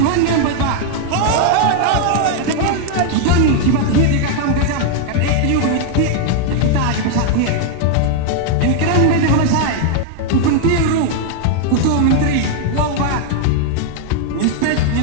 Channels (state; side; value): different; both; correlation 0.00